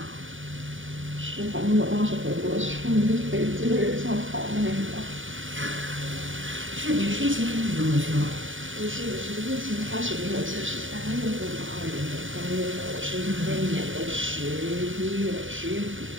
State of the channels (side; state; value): left; late; 0.57 ms